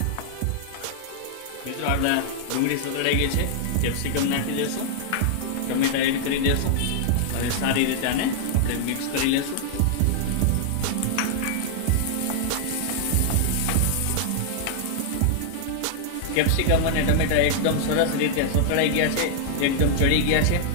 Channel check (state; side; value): different; both; correlation -0.01